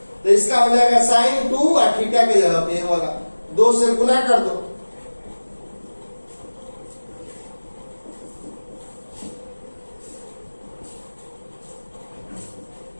तो इसका हो जाएगा sin 2 और थीटा के जगह पे होगा 2 से गुना कर दो,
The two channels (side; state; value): both; inverted; correlation -1.00